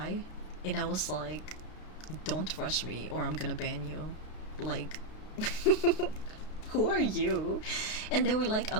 And I was like, don't rush me or I'm gonna ban you. Like, who are you? And they were like,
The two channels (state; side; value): late; right; 32 ms